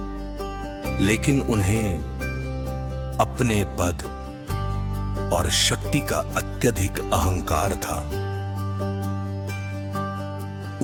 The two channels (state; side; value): identical; both; correlation 1.00